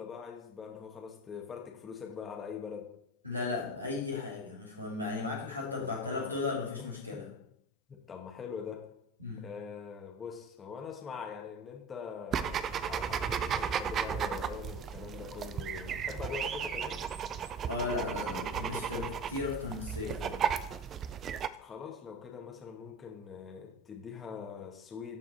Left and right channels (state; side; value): normal; both; correlation 0.33